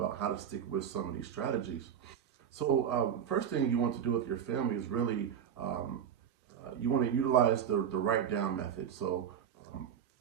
about how to stick with some of these strategies. So first thing you want to do with your family is really, you want to utilize the write down method. So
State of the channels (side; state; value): left; quieter; 8.6 dB